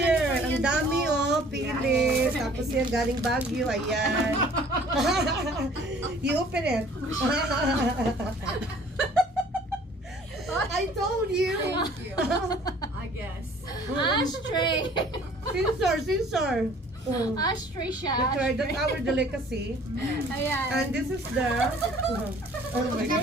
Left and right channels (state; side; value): normal; both; correlation 0.53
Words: tinapay ang yan, dami oh. pili. Tapos yan galing Baguio, ayan. You open it. I told you. Thank you. I guess. Ashtray! Sinsor. Ashtray siya. That's right, that's our delicacy. Ayan. And this is the... oh my